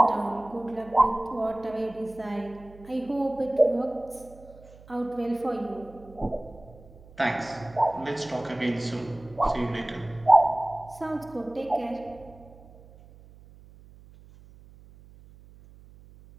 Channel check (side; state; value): right; noise; hum, 22 dB below the sound